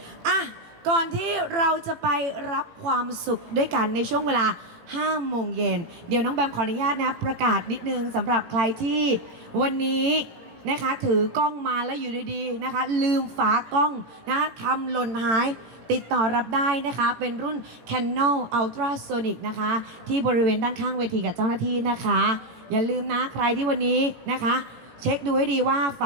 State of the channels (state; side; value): late; left; 18 ms